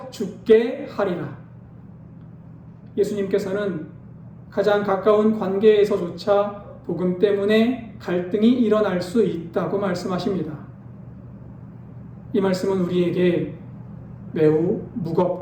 죽게 하리라. 예수님께서는 가장 가까운 관계에서조차 복음 때문에 갈등이 일어날 수 있다고 말씀하십니다. 이 말씀은 우리에게 매우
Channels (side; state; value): both; identical; correlation 1.00